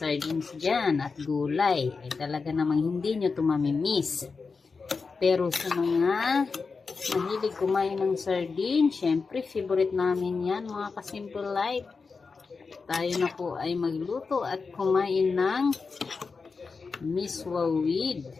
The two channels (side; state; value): right; quieter; 4.7 dB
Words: dyan at gulay. Ay talaga namang hindi nyo to mamimiss. Pero sa mga mahilig kumain ng sardines, syempre favorite namin yan, mga ka-simple life. Tayo na po ay magluto at kumain ng miswa with